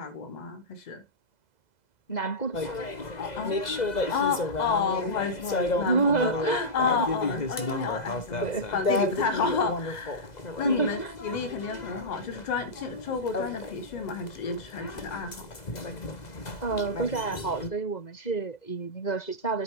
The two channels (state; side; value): late; right; 2.0 ms